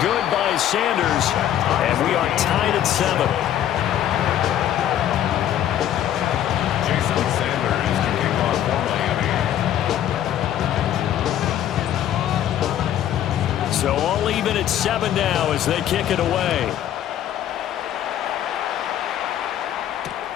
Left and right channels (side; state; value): right; quieter; 11.1 dB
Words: good by Sanders. And we are tied at 7. So all even at 7 now as they kick it away.